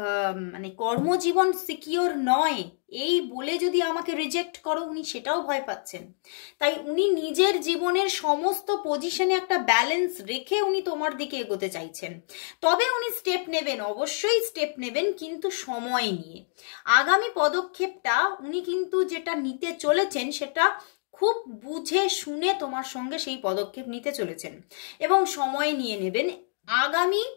মানে কর্মজীবন সিকিওর নয় এই বলে যদি আমাকে রিজেক্ট করো, উনি সেটাও ভয় পাচ্ছেন। তাই উনি নিজের জীবনের সমস্ত পজিশনে একটা ব্যালেন্স রেখে উনি তোমার দিকে এগোতে চাইছেন। তবে উনি স্টেপ নেবেন, অবশ্যই স্টেপ নেবেন, কিন্তু সময় নিয়ে। আগামী পদক্ষেপটা উনি কিন্তু যেটা নিতে চলেছেন সেটা খুব বুঝে শুনে তোমার সঙ্গে সেই পদক্ষেপ নিতে চলেছেন এবং সময় নিয়ে নেবেন। আগামী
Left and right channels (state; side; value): silent; right; digital silence